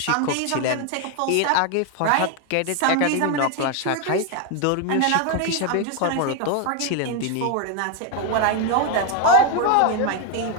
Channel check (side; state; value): both; different; correlation 0.01